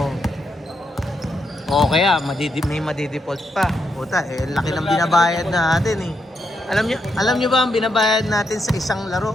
O kaya may madidefault pa. Puta, eh laki ng binabayad natin eh. Alam nyo ba ang binabayad natin sa isang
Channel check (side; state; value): both; normal; correlation 0.81